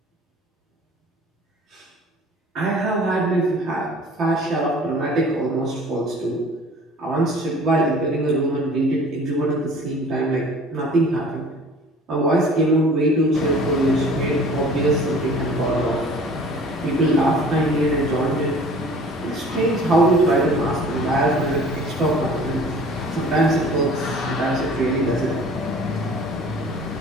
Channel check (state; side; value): normal; both; correlation 0.48